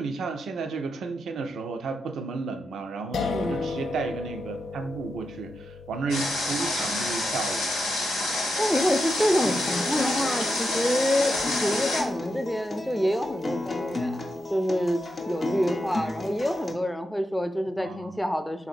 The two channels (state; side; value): normal; both; correlation 0.86